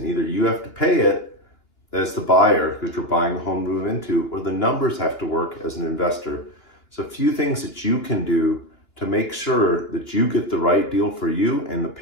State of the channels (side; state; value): right; late; 2.9 ms